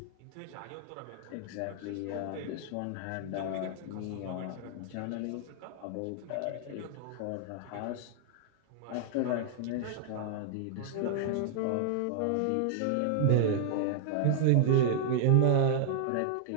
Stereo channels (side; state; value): both; different; correlation 0.00